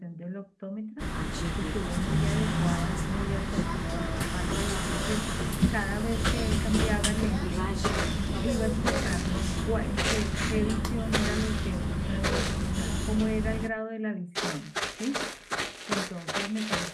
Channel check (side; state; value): both; identical; correlation 1.00